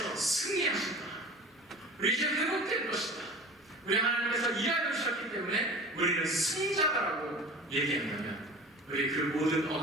승리하신다, 우리 이제 회복될 것이다, 우리 하나님께서 일하여 주셨기 때문에 우리는 승자다라고 얘기한다면 우리 그 모든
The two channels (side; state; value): both; normal; correlation 0.38